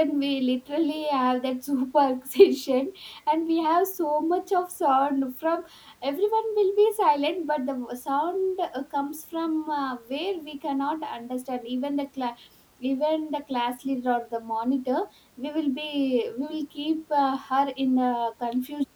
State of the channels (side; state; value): both; identical; correlation 1.00